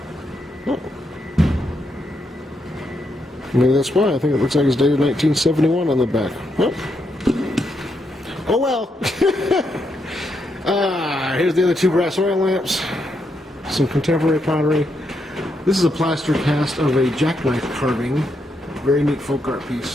Oh. Maybe that's why. I think it looks like it's dated 1971 on the back. Oh well. Here's the other 2 brass oil lamps. Some contemporary pottery. This is a plaster cast of a jackknife carving. Very neat folk art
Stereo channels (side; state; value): both; normal; correlation 0.80